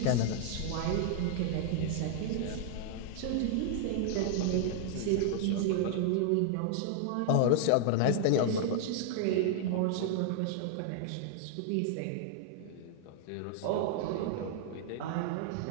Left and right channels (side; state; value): both; different; correlation 0.00